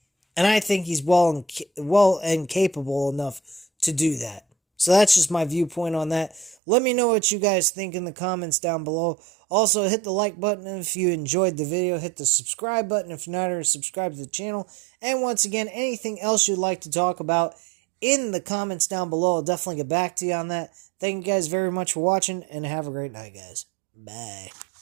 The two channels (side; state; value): left; drops out; at 6.6 s